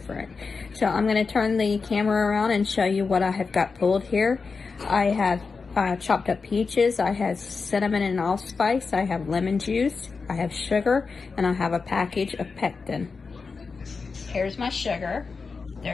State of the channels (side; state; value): right; quieter; 4.7 dB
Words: So I'm going to turn the camera around and show you what I have got pulled here. I have chopped up peaches, I have cinnamon and allspice, I have lemon juice, I have sugar, and I have a package of pectin. Here's my sugar,